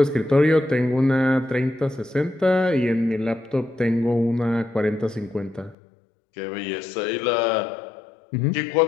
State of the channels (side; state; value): right; drops out; at 5.8 s